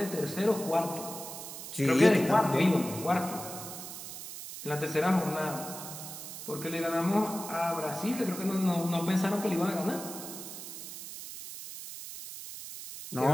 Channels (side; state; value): right; noise; hiss, 10 dB below the sound